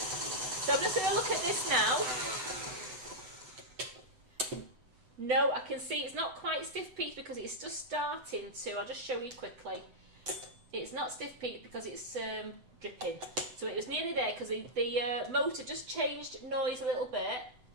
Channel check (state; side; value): late; left; 8.0 ms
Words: So I'm just going to look at this now. No, I can see it's not quite stiff peaked because it's just starting to. I'll just show you quickly. It's not stiff peaked because it's dripping. So it was nearly there because the motor just changed noise a little bit.